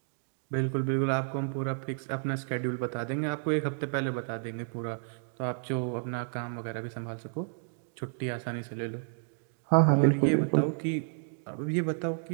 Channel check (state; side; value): silent; left; 57 dB below the other